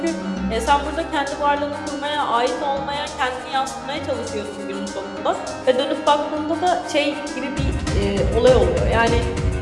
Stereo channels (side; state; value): both; identical; correlation 1.00